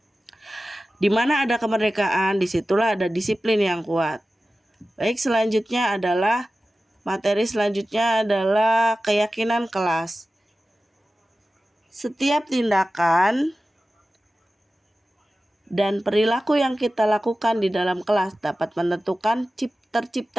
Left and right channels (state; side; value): normal; both; correlation 0.95